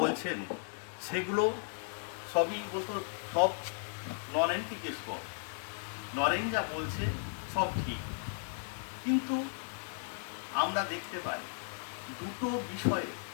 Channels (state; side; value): silent; right; 54 dB below the other